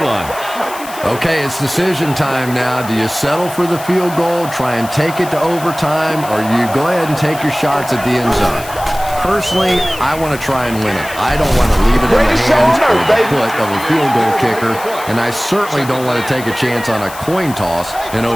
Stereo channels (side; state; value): left; noise; hiss, 15 dB below the sound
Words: line. Okay, it's decision time now. Do you settle for the field goal, try and take it to overtime, or you go ahead and take your shots at the end zone? Personally, I want to try and win it. I don't want to leave it in the hands or the foot of a field goal kicker, and I certainly don't want to take a chance on a coin toss in